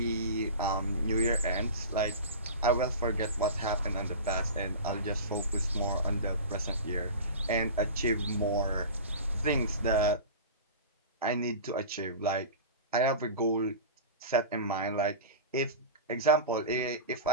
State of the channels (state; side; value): inverted; both; correlation -0.31